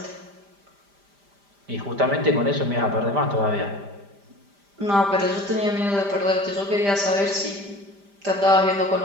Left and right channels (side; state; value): left; late; 5.0 ms